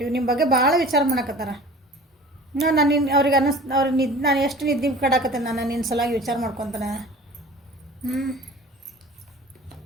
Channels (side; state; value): both; normal; correlation 0.42